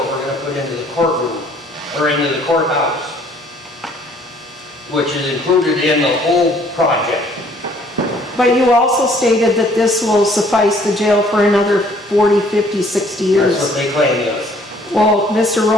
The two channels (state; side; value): normal; both; correlation 0.60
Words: we're gonna put into the courtroom, or into the courthouse, which is included in the whole project. But you also stated that this will suffice the jail for another 40, 50, 60 years. That's what they claim, yes. Well, Mr.